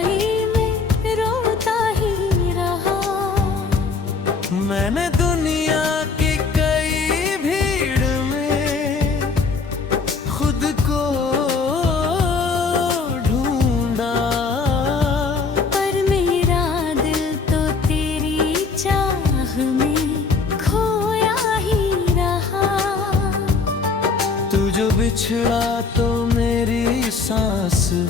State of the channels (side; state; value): right; quieter; 4.6 dB